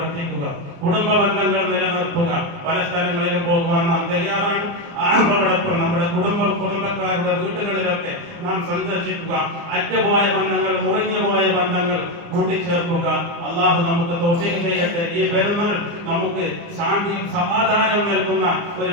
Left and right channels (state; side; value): late; left; 29 ms